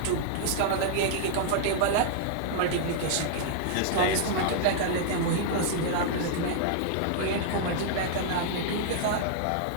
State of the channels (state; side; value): different; both; correlation -0.01